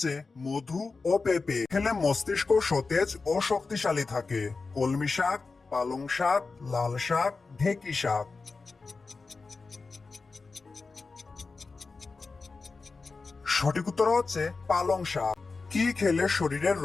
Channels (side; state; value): right; quieter; 4.2 dB